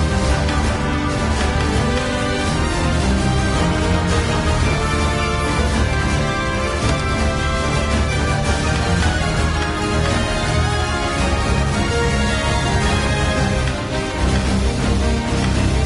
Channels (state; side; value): identical; both; correlation 1.00